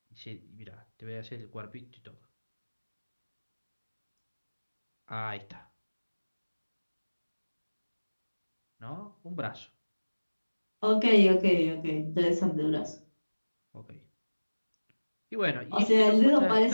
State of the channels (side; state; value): both; inverted; correlation -1.00